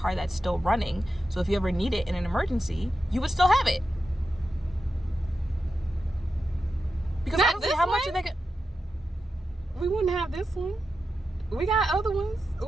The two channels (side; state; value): both; normal; correlation 0.89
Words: that's still running. So if you ever need it in an emergency, you would still have it. Because Not honestly, this how much one? are they? We wouldn't have this one. We got other ones.